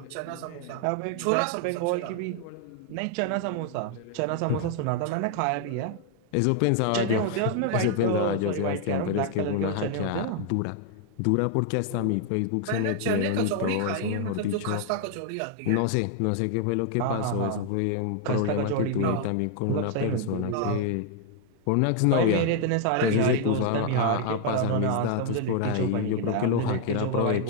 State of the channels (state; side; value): different; both; correlation 0.00